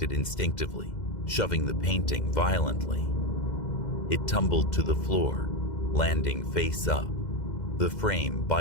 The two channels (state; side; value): late; right; 2.1 ms